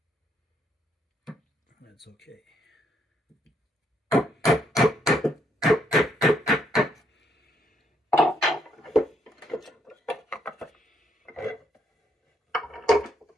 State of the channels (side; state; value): both; normal; correlation 0.73